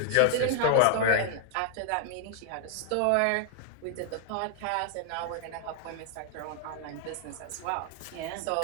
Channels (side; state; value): both; different; correlation 0.00